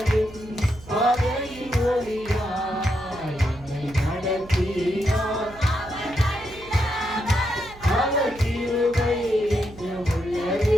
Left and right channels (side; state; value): right; noise; hum, 19 dB below the sound